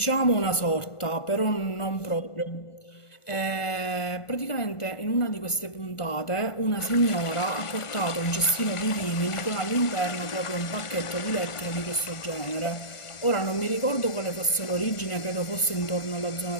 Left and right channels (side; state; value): right; late; 1.5 ms